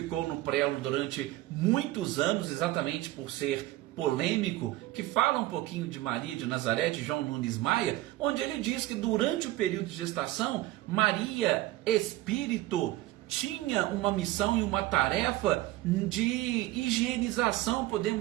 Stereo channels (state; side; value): quieter; left; 16.8 dB